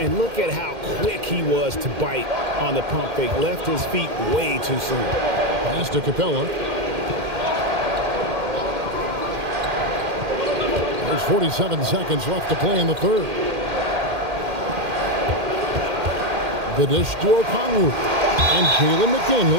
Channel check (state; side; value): late; left; 2.1 ms